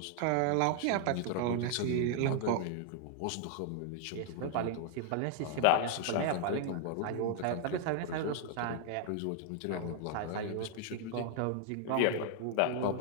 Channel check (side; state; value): both; different; correlation 0.00